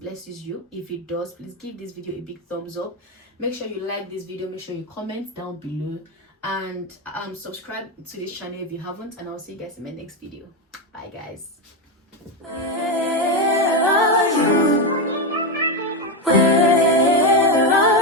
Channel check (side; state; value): both; normal; correlation 0.10